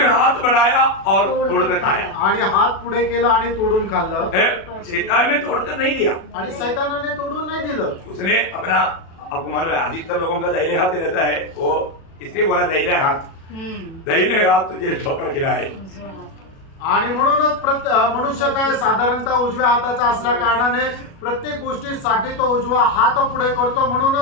हाथ बढ़ाया और तोड़कर खाया, आणि हात पुढे केला आणि तोडून खाल्लं। शैतान ने तोड़कर नहीं दिया, आणि शैतानाने तोडून नाही दिलं, उसने अपना, आपको मालूम है अधिकतर लोगों का दाहिने हाथ रहता है, वो इसलिए बोला दाहिने हाथ तुझे ठोकर खिलाए। आणि म्हणूनच मनुष्य काय साधारणतः उजव्या हाताचा असल्या कारणाने प्रत्येक गोष्टीसाठी तो उजवा हात पुढे करतो।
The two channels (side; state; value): right; late; 37 ms